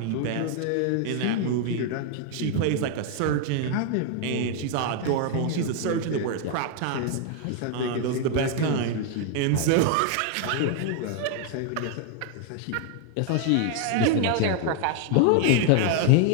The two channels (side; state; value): both; different; correlation 0.00